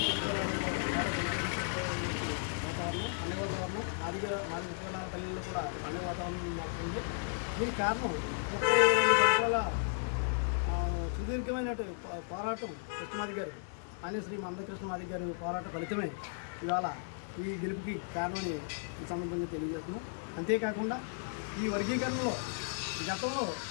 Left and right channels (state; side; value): silent; right; digital silence